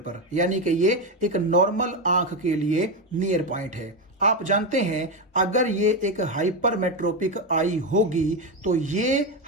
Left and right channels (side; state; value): both; normal; correlation 0.11